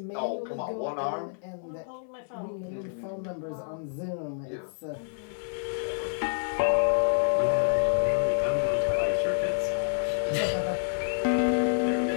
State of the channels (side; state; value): right; silent; 59 dB below the other